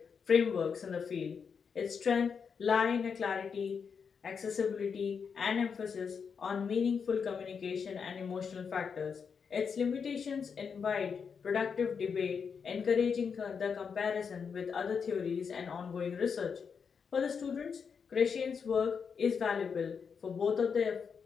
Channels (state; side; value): quieter; right; 6.2 dB